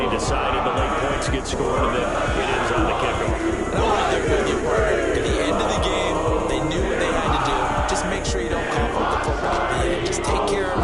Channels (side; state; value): both; identical; correlation 1.00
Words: decided. The late points get scored, and then it ends on the kickoff. I'm right there with you, Parker. At the end of the game, they knew what they had to do. Just make sure you don't cough up the football at the end. Just take care of